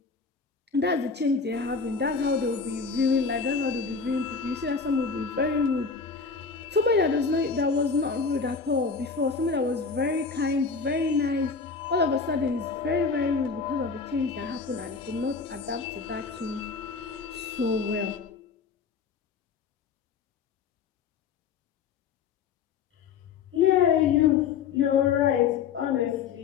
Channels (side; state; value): right; quieter; 5.4 dB